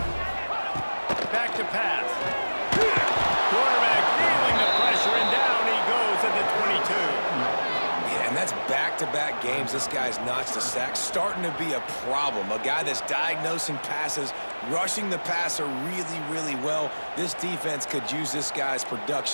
Back to pass. Quarterback feeling the pressure, and down he goes at the 22. Yeah, and that's back-to-back games. This guy's notched a sack, starting to be a problem. A guy that's diagnosing passes, rushing the passer really, really well. This defense could use this guy's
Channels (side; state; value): both; inverted; correlation -1.00